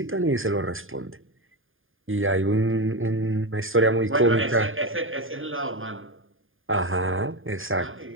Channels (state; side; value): late; left; 0.59 ms